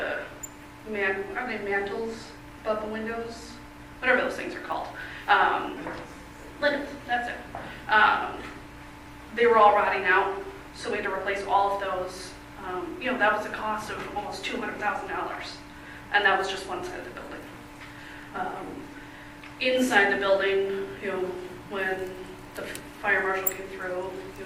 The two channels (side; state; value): both; identical; correlation 1.00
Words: they mantles above the windows? Whatever those things are called. Linens, that's it. They were all rotting out, so we had to replace all of those. That was a cost of almost $200,000, and that was just one side of the building. Inside the building, when the fire marshal came through,